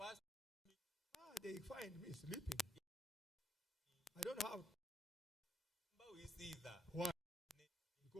They find me sleeping. I don't have. Why?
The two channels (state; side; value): normal; both; correlation 0.78